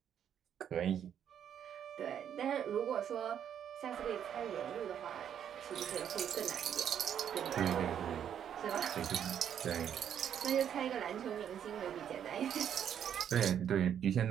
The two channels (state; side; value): quieter; left; 9.1 dB